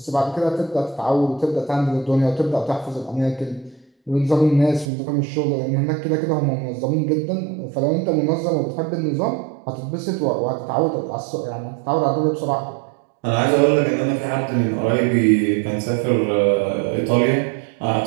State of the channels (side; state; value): left; drops out; at 4.9 s